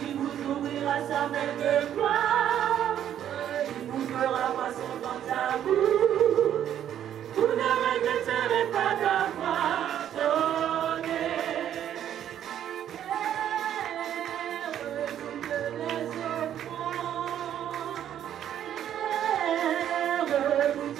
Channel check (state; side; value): quieter; left; 10.4 dB